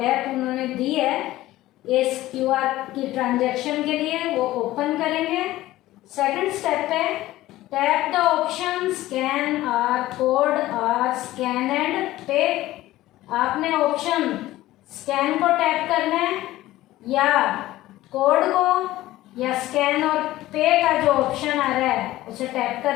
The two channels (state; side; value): quieter; right; 16.1 dB